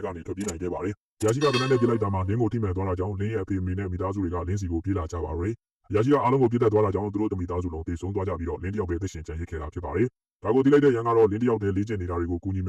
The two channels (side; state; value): both; identical; correlation 1.00